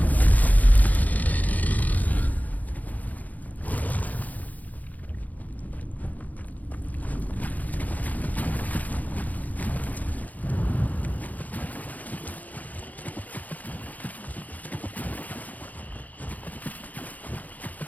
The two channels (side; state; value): right; late; 0.079 ms